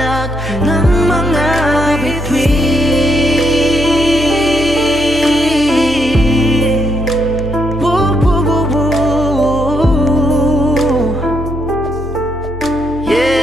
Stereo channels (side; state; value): both; normal; correlation 0.73